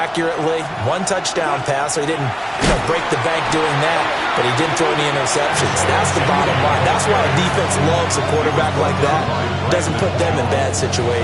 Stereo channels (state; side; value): identical; both; correlation 1.00